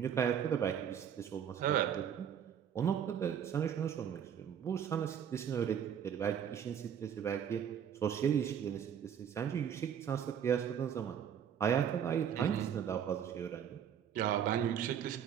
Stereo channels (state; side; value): quieter; left; 8.6 dB